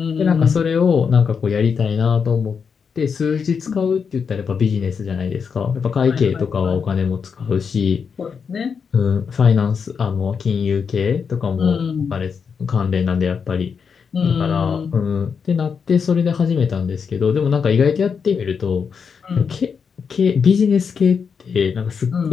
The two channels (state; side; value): quieter; right; 6.2 dB